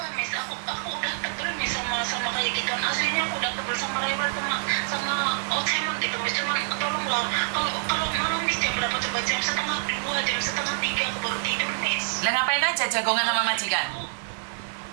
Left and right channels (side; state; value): left; silent; 56 dB below the other